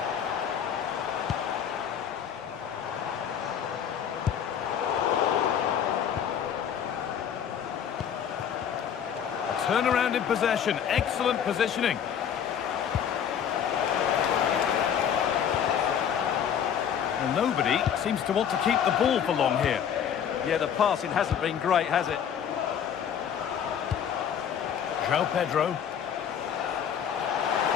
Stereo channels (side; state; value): right; quieter; 8.5 dB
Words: A turnaround in possession. Excellent positioning. And nobody seems to want to keep the ball for long here. Yeah, the passing hasn't been great, has it? João Pedro.